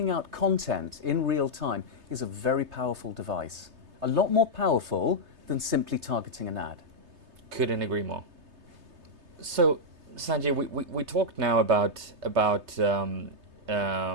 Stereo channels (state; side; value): late; left; 3.3 ms